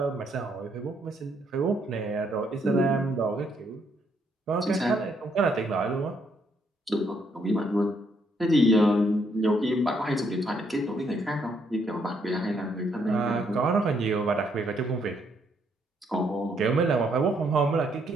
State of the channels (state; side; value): normal; both; correlation 0.72